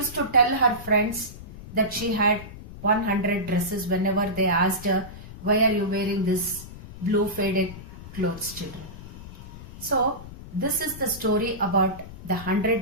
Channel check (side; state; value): left; noise; rumble, 14 dB below the sound